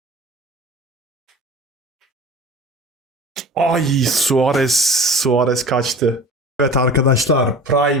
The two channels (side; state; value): both; normal; correlation 0.39